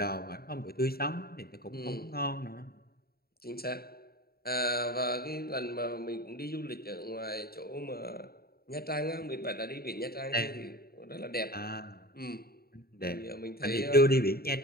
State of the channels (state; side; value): late; right; 0.45 ms